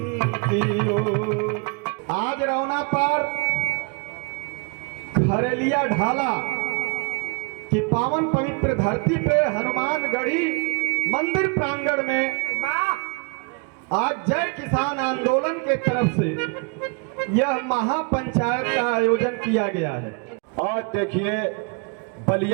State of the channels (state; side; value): quieter; left; 35.1 dB